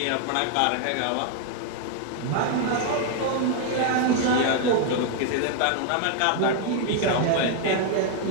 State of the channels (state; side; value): different; both; correlation 0.00